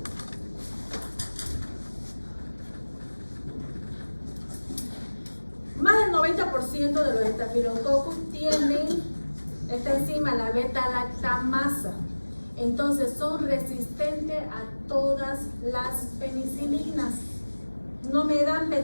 Más del 90% de los estafilococcus tienen esta enzima, la beta-lactamasa. Entonces son resistentes a todas las penicilinas. No me dan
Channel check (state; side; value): inverted; both; correlation -1.00